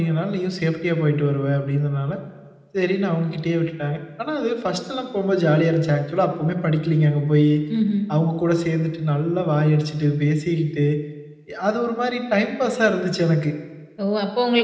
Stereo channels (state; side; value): identical; both; correlation 1.00